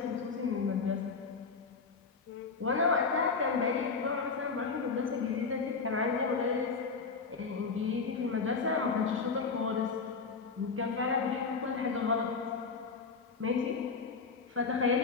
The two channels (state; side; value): quieter; right; 4.8 dB